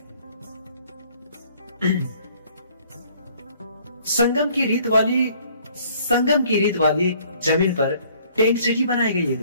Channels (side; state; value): both; inverted; correlation -0.59